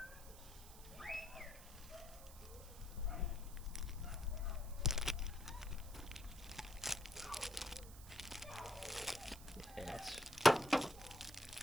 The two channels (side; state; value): right; noise; hiss, 17 dB below the sound